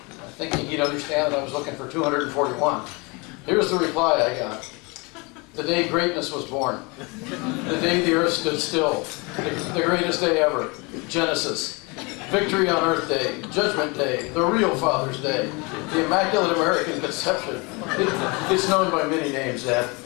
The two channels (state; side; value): quieter; right; 28.2 dB